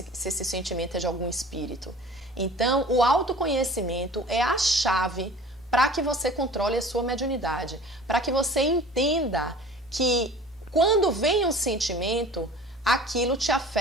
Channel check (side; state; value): both; normal; correlation 0.45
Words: sentimento é de algum espírito? Então, o autoconhecimento é a chave para que você controle a sua mediunidade, para que você entenda que quando vem um sentimento, aquilo te